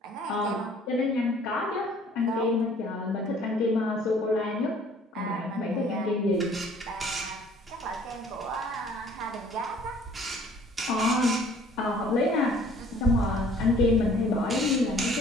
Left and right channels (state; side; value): normal; both; correlation 0.55